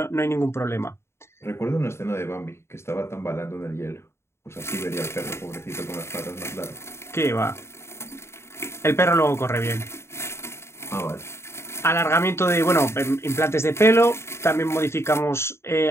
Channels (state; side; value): late; right; 0.13 ms